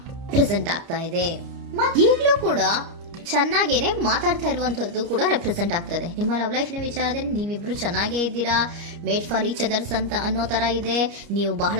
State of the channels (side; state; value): left; late; 29 ms